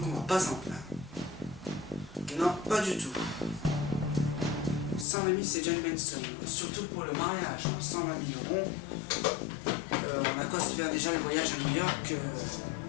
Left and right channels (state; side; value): drops out; right; at 5.1 s